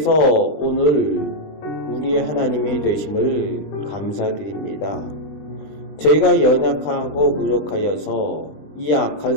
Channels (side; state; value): right; late; 20 ms